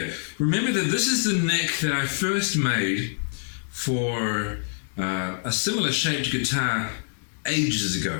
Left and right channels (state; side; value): silent; right; digital silence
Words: Remember that this is the neck that I first made for a similar shaped guitar ages